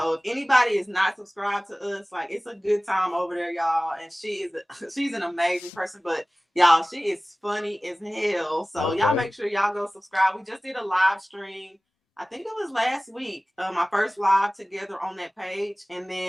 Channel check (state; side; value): normal; both; correlation 0.98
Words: if anybody is not subscribed to us, like it's a good time over there, y'all. And she's an amazing person, but y'all, she is funny as hell. So y'all okay, make sure y'all go subscribe. We just did a live stream. I think it was last week, my first live together on that page. And